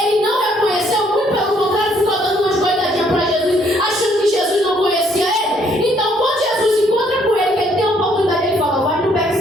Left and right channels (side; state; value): both; normal; correlation 0.67